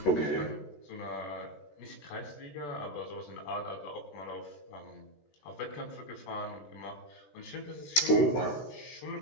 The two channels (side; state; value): right; late; 13 ms